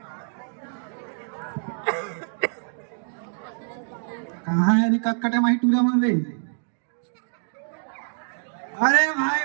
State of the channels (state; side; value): silent; left; digital silence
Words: कहाँ है कटकटे माही टूरा मार रही। अरे भाई